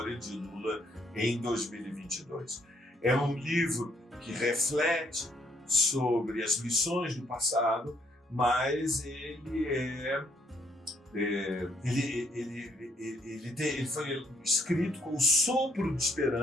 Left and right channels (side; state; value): both; normal; correlation 0.69